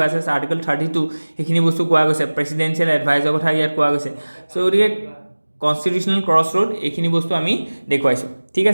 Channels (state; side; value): inverted; both; correlation -1.00